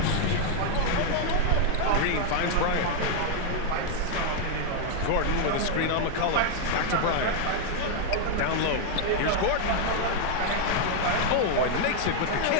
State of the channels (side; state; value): both; different; correlation 0.00